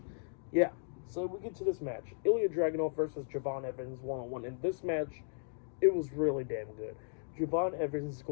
Yeah, so we get to this match. Ilja Dragunov versus Javon Evans one-on-one. In this match, it was really damn good. Javon Evans is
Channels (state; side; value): silent; right; digital silence